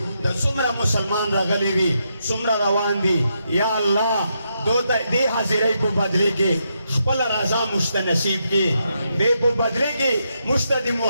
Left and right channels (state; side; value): inverted; both; correlation -0.81